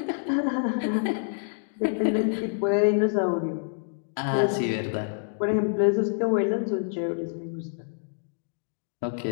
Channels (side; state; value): right; silent; digital silence